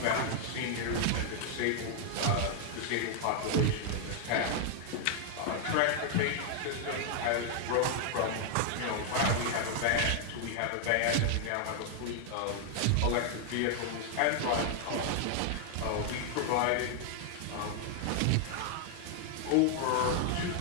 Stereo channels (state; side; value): different; both; correlation 0.00